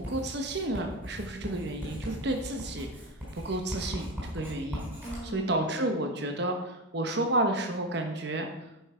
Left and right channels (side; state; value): both; normal; correlation 0.21